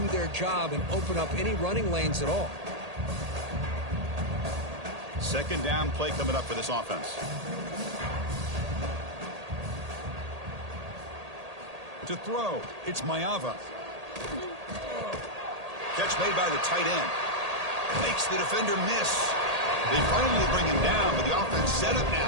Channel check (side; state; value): left; late; 1.8 ms